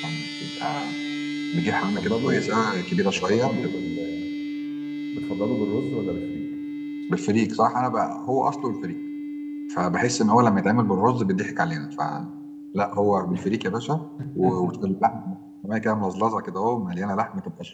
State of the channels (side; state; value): both; identical; correlation 1.00